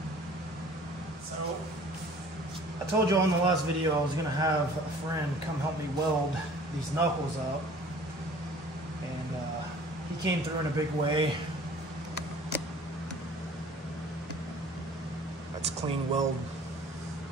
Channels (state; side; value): normal; both; correlation 0.49